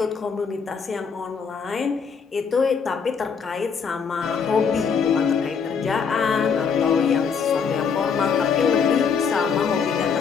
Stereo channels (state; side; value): quieter; right; 6.1 dB